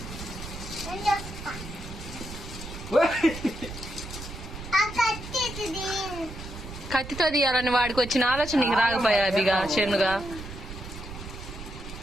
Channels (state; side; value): noise; right; rumble, 11 dB below the sound